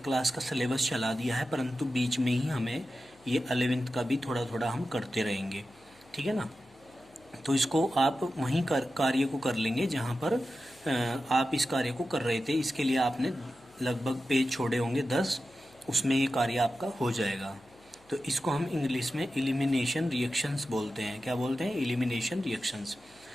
क्लास का सिलेबस चला दिया है, परंतु बीच में ही हमें ये 11वीं का भी थोड़ा थोड़ा हम करते रहेंगे, ठीक है ना। तो इसको आप वहीं कार्य को कर लेंगे जहाँ पर आप इस कार्य को कर रहे थे। इसके लिए आपने लगभग पेज छोड़े होंगे 10, उसमें ये कार्य आपका हो जाएगा। तो इसको हम इंग्लिश में एलिमिनेशन रिएक्शंस बोलते हैं। क्या बोलते हैं? Elimination reactions.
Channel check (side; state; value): left; noise; hum, 29 dB below the sound